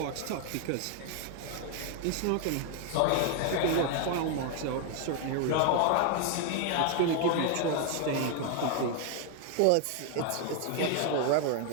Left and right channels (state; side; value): different; both; correlation 0.00